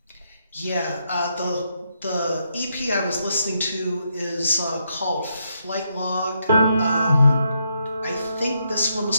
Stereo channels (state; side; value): inverted; both; correlation -0.79